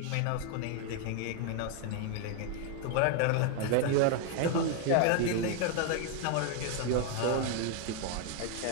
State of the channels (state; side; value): different; both; correlation 0.01